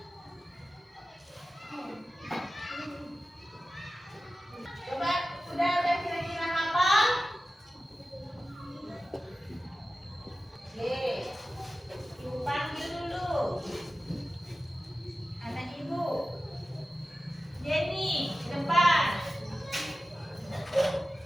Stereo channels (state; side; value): normal; both; correlation 0.95